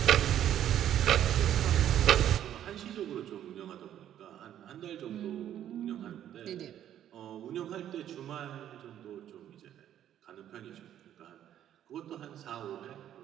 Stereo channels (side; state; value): left; quieter; 10.9 dB